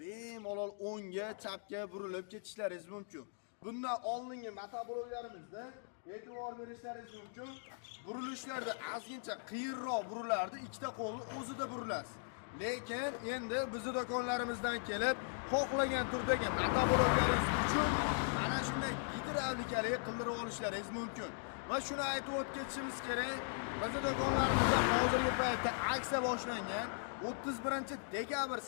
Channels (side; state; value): right; silent; digital silence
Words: bemalol o'ngga, chapga burilib ketishlaringiz mumkin. Bundan oldingi motobloklarimizni e'tibor berishlaringiz mumkin. Burilishlarda ozgincha qiyinroq burilardi, ikkita qo'lni o'zida burilasiz. Lekin endi bizning do'konlarimizdan kelib, xohlagan turdagi motobloklarimiz uchun mana shunday gidravlikali qildirib olishlaringiz mumkin. Va shuni aytib o'tishimiz kerak. Bizning do'konlarimizda hozirgi paytda aksiya boshlangan. 31-dekabr